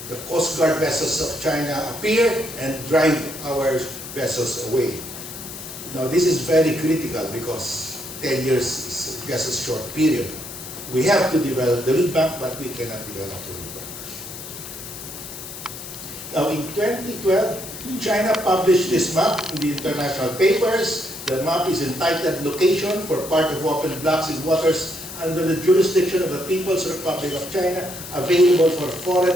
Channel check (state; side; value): noise; left; hiss, 11 dB below the sound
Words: the Coast Guard vessels of China appear and drive our vessels away. Now this is very critical because 10 years is just a short period. We have to develop the reed bank, but we cannot develop the reed bank. Now in 2012, China published this map in the international papers. The map is entitled Location for Part of Open Blocks in Waters under the Jurisdiction of the People's Republic of China, available for